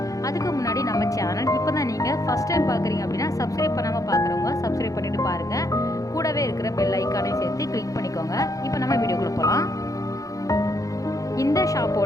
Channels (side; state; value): right; late; 0.17 ms